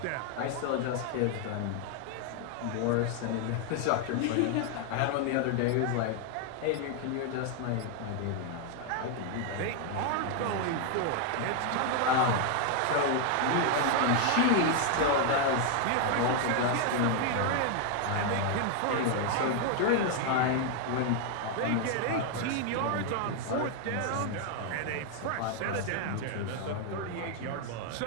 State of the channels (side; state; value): both; different; correlation 0.00